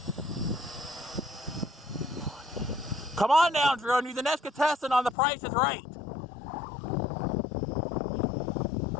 Come on down, drone. You're the next contestant on The Price is Right.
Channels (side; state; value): right; drops out; at 5.2 s